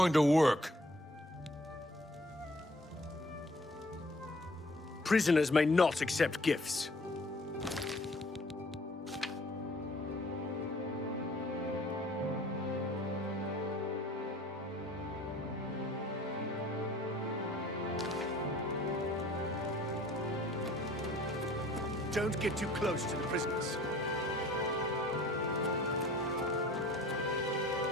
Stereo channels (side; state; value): both; normal; correlation 0.54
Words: to work. Prisoners may not accept gifts. Don't get too close to the prisoners.